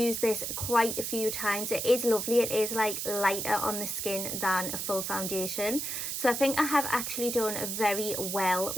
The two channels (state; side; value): noise; right; hiss, 3 dB below the sound